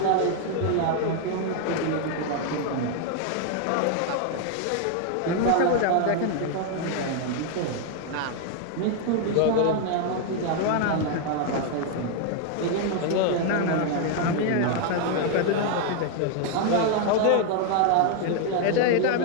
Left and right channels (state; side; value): different; both; correlation 0.00